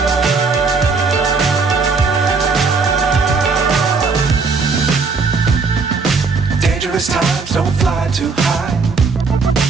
Times don't fly too high.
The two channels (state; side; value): quieter; left; 4.5 dB